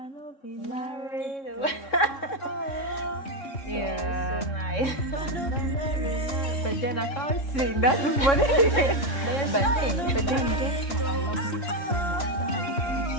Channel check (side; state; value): right; late; 3.6 ms